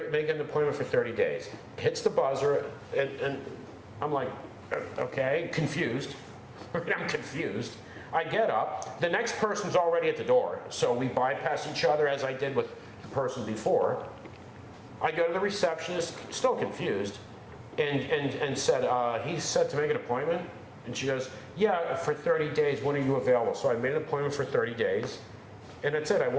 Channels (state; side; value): identical; both; correlation 1.00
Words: appointment for 30 days. Hits the buzzer, and I'm like, okay, confused. I'm confused. I get up. The next person's already at the door, so we bypass each other as I did with the person before. I go to the receptionist, still confused, and said, he said to make an appointment. And she goes, yeah, for 30 days, when are you available? So I made an appointment for 30 days. And that's it, I